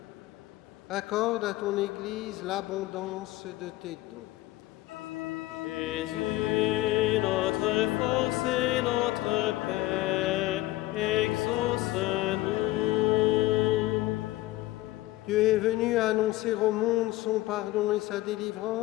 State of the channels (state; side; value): quieter; right; 17.5 dB